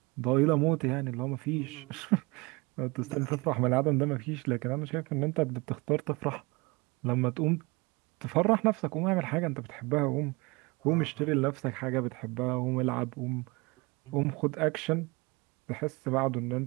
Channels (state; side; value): quieter; left; 25.7 dB